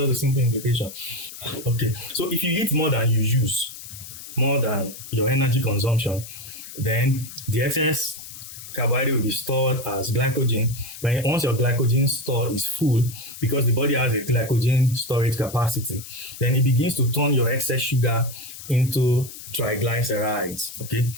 a simple implication. Okay, so if you eat more than you use, more than your energy consumption, then the excess carbohydrate will be stored as glycogen. Once your glycogen store is full, because the body has a glycogen storage capacity, then it begins to turn your excess sugar into triglycerides. Okay,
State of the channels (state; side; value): noise; left; hiss, 13 dB below the sound